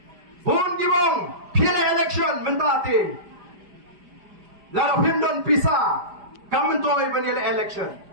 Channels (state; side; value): late; left; 5.0 ms